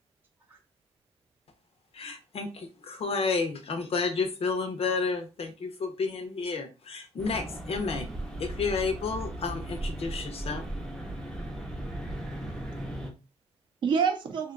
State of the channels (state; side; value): normal; both; correlation 0.47